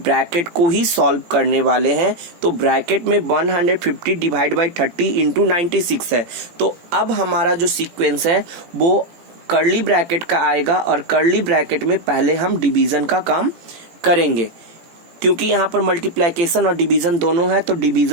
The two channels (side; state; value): left; late; 17 ms